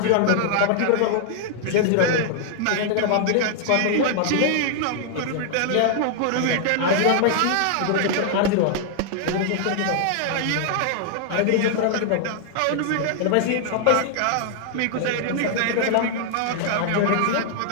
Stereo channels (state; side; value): different; both; correlation 0.00